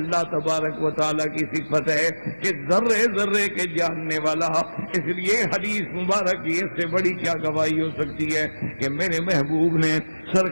تبارک و تعالیٰ کی صفت ہے کہ ذرے ذرے کے جاننے والا. اس لیے حدیث مبارک کی اس سے بڑی کیا گواہی ہو سکتی ہے کہ میرے محبوب نے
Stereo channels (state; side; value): inverted; both; correlation -1.00